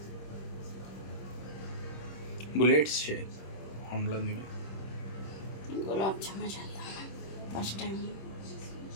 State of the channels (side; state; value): right; late; 26 ms